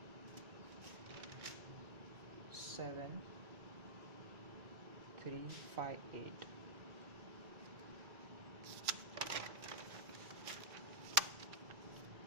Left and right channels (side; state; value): left; late; 3.0 ms